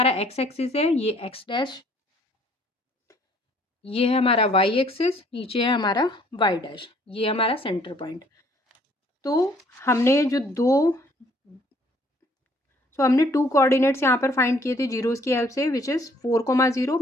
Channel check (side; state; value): both; normal; correlation 0.61